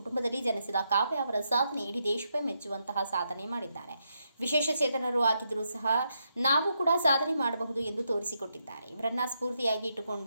ಜನಿಸಿದ ಕಾವ್ಯ ಅವರ ಸಾಧನೆ ಇಡೀ ದೇಶವೇ ಮೆಚ್ಚುವಂತಹ ಸಾಧನೆ ಮಾಡಿದ್ದಾರೆ. ವಿಶೇಷ ಚೇತನರು ಆಗಿದ್ದರೂ ಸಹ ನಾವು ಕೂಡ ಸಾಧನೆ ಮಾಡಬಹುದು ಎಂದು ತೋರಿಸಿಕೊಟ್ಟಿದ್ದಾರೆ. ಇವರನ್ನ ಸ್ಫೂರ್ತಿಯಾಗಿ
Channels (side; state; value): both; inverted; correlation -0.81